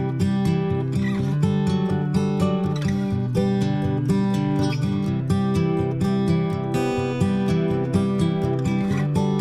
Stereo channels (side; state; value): both; identical; correlation 1.00